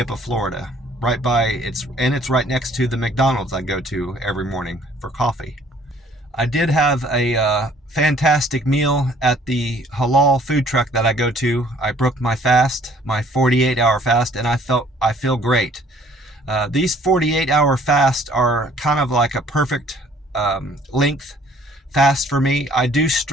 Florida. It's right next to the McDonald's I go to every morning for coffee. I did have a fantastic meal at the halal food truck that I go to. I broke my fast, my 48-hour fast, and I feel great. These 48-hour fasts are kind of like a perfect length fast for me. I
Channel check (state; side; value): normal; both; correlation 0.57